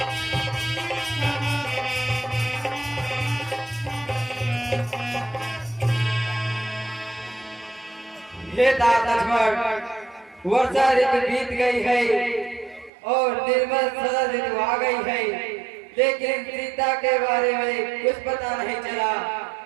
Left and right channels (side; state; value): left; drops out; at 12.9 s